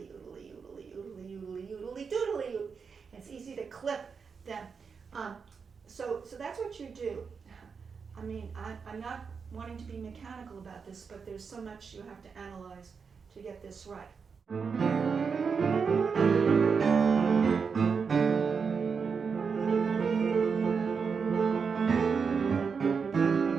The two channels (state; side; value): quieter; left; 5.7 dB